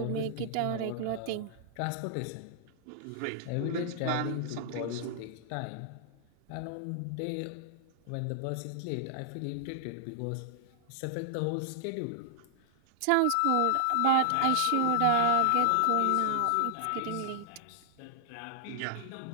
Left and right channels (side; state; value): both; different; correlation -0.01